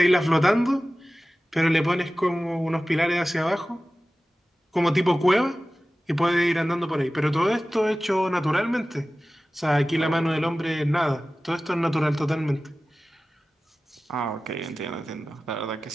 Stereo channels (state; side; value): normal; both; correlation 0.96